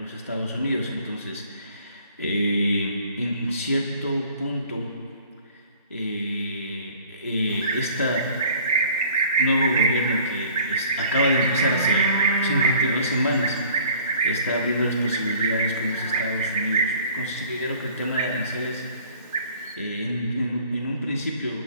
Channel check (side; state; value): both; inverted; correlation -0.52